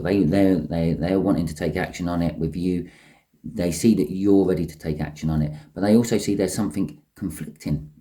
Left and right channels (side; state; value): both; identical; correlation 1.00